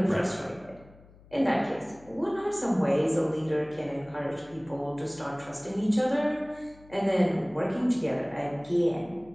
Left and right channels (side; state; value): left; noise; hum, 24 dB below the sound